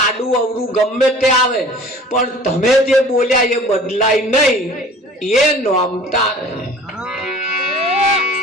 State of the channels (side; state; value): both; normal; correlation 0.46